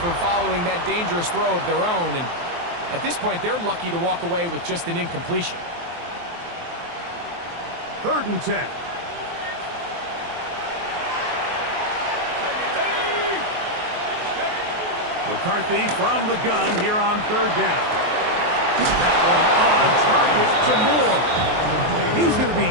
following that dangerous throw of their own. And at this point, they're lucky to walk away with just an incompletion. 3rd and 10. McCarthy from the gun here on 3rd down. That one on target to Moore. He's going to be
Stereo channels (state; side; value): late; left; 23 ms